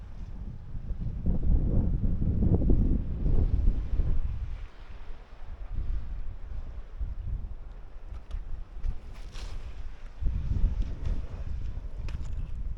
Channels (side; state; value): both; identical; correlation 1.00